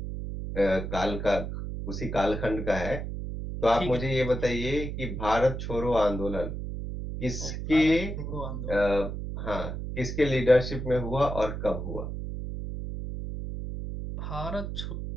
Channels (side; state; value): right; noise; hum, 5 dB below the sound